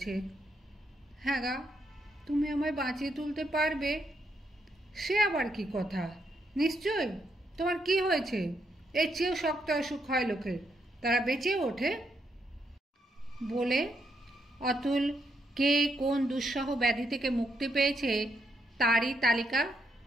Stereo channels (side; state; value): both; normal; correlation 0.78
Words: হ্যাঁ গা, তুমি আমায় বাঁচিয়ে তুলতে পারবে? সে আবার কি কথা, নিশ্চয়। তোমার কি হয়েছে? এর চেয়েও শক্ত অসুখ হয় লোকের, তারা বেঁচেও ওঠে। বলে অতুল কে কোন দুঃসহ ব্যাধি থেকে মুক্তি পেয়েছে তারই তালিকা